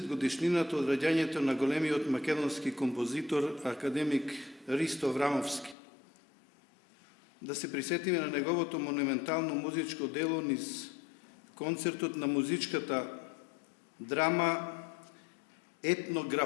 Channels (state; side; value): drops out; right; at 5.8 s